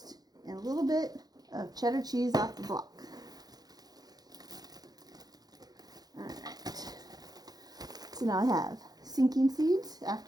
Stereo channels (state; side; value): late; left; 0.19 ms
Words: and a little bit of cheddar cheese off the block. Alright. So now I have sinking seeds